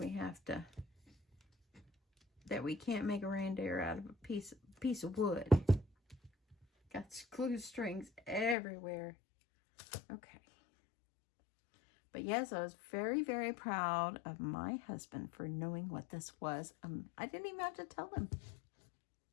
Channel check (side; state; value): right; drops out; at 8.6 s